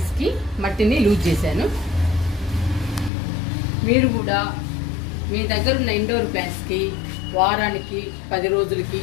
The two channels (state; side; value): drops out; right; at 3.1 s